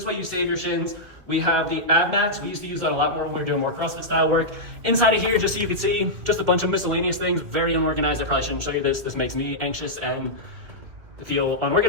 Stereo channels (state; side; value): late; left; 2.4 ms